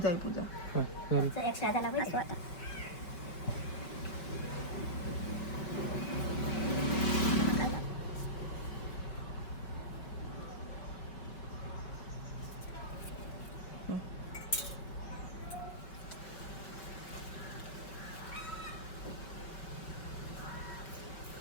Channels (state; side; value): late; right; 5.2 ms